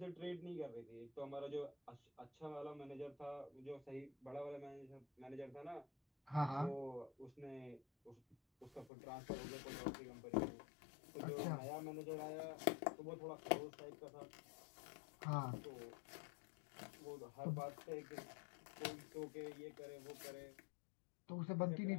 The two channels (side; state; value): right; drops out; at 8.9 s